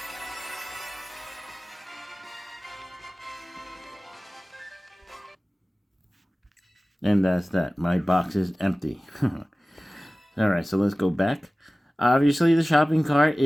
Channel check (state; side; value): normal; both; correlation 0.97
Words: And that's that. My box is empty. Alright, so let's go back. Obviously, the shopping cart